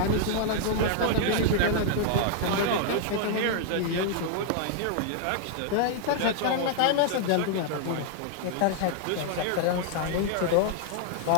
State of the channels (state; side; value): different; both; correlation -0.01